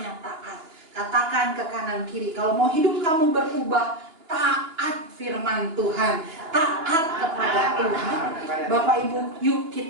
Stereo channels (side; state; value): left; late; 2.9 ms